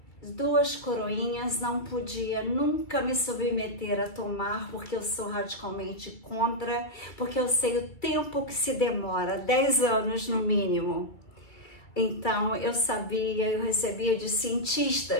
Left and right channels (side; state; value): right; late; 2.3 ms